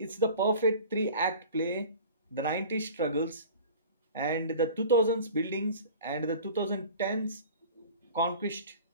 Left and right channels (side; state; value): both; inverted; correlation -0.41